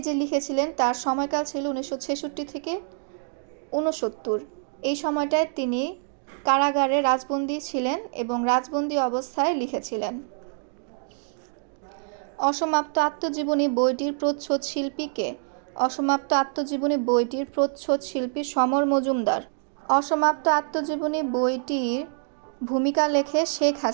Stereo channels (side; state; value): left; silent; digital silence